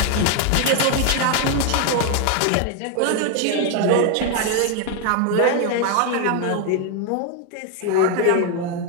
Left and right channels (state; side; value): different; both; correlation 0.01